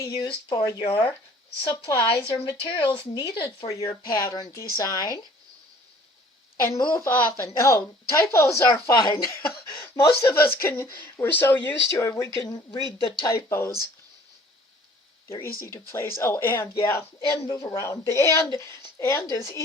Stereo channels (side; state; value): both; normal; correlation 0.54